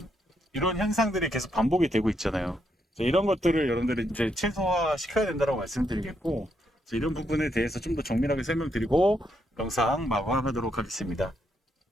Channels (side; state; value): both; normal; correlation 0.78